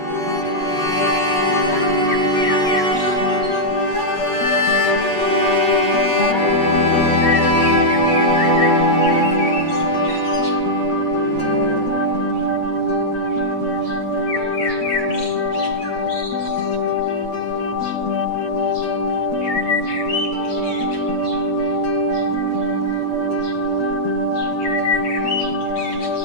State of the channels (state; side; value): late; right; 8.3 ms